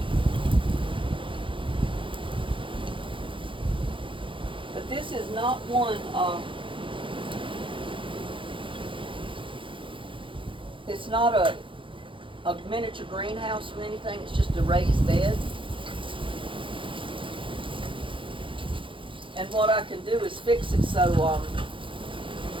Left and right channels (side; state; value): left; late; 0.25 ms